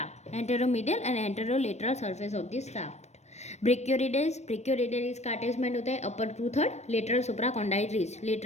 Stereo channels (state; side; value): late; right; 0.32 ms